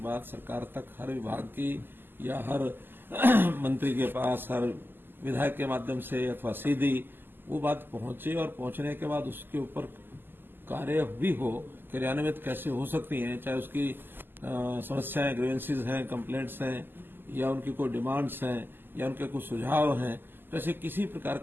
सरकार तक हर विभाग की या हर मंत्री के पास, हर विधायक के माध्यम से अथवा सीधी वो बात पहुंचे और पहुंचने के बाद उसके ऊपर कार्य भी हो, क्रियान्वित कैसे हो सकती हैं, चाहे उसकी समस्याएं, ग्रीवेंसेस हैं, कंप्लेंट्स हैं या उनकी कोई डिमांड्स हैं या उनके कुछ सुझाव हैं, तो ऐसे किसी प्रकार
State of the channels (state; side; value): late; left; 0.095 ms